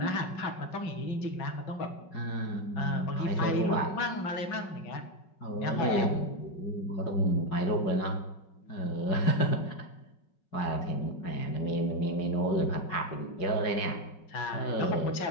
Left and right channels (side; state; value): right; late; 5.4 ms